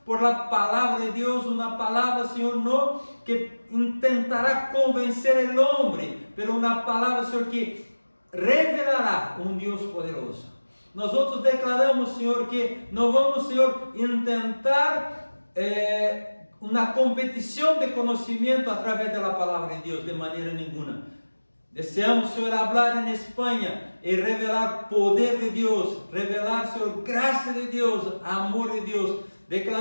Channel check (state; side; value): inverted; both; correlation -1.00